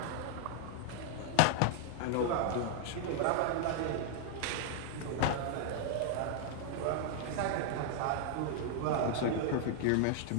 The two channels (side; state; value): both; different; correlation 0.00